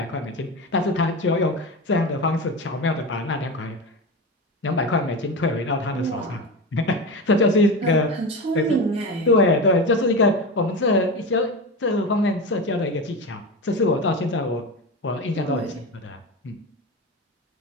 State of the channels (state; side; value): normal; both; correlation 0.23